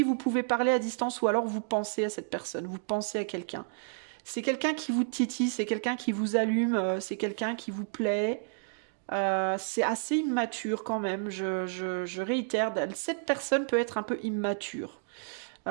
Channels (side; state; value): left; silent; digital silence